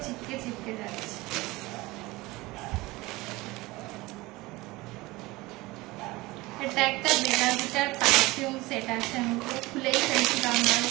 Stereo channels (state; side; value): quieter; left; 21.0 dB